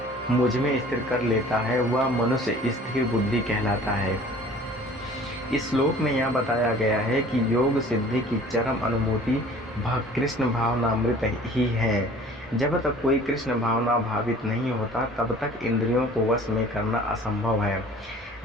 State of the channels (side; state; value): both; normal; correlation 0.48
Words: मुझ में स्थिर कर लेता है, वह मनुष्य स्थिर बुद्धि कहलाता है। इस श्लोक में यह बताया गया है कि योग सिद्धि की चरम अनुभूति कृष्ण भावनामृत ही है। जब तक कोई कृष्ण भावना भावित नहीं होता, तब तक इंद्रियों को वश में करना असंभव है।